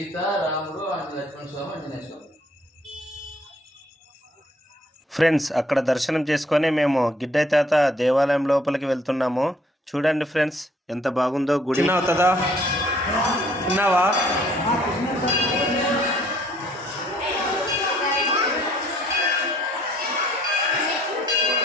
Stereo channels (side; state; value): both; normal; correlation 0.61